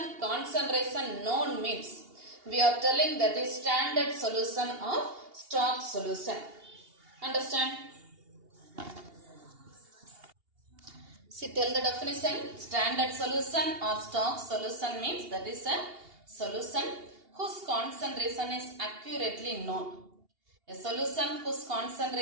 concentration known means we are telling that is standard solution or stock solution. Understand? See, tell the definition. Standard solution or stock solution means that is a solution whose concentration is accurately known. A solution whose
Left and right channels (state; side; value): late; left; 2.8 ms